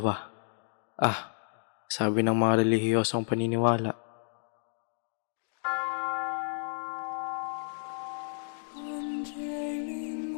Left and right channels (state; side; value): silent; right; digital silence